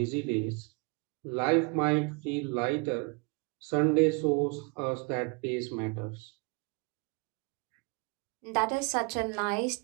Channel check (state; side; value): quieter; left; 32.2 dB